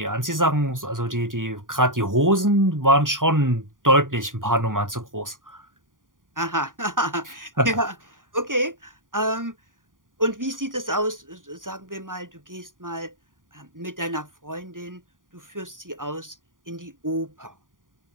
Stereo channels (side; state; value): left; late; 0.89 ms